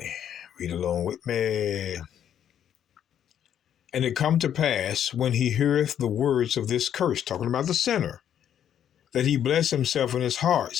Read along with me. "And it come to pass, when he heareth the words of this curse," talking about the sinner, "that he bless himself in his heart,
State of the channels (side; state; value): right; quieter; 9.7 dB